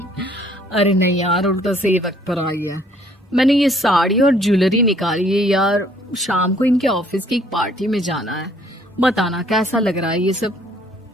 अरे नहीं यार, उल्टा सही वक्त पर आई है। मैंने ये साड़ी और ज्वेलरी निकाली है यार, शाम को इनके ऑफिस की एक पार्टी में जाना है। बताना कैसा लग रहा है ये सब?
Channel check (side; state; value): both; normal; correlation 0.61